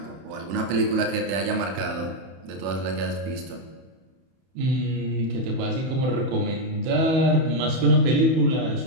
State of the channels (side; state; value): left; late; 31 ms